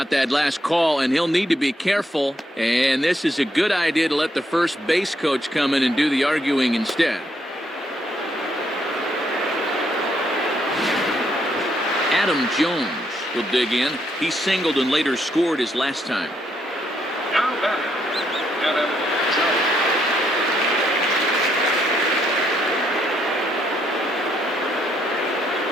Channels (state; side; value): normal; both; correlation 0.74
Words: that last call, and he'll need to be careful. And this is a good idea to let the first base coach come in and do the arguing instead. Adam Jones will dig in. He singled and later scored his last time. Now batting, Adam Jones.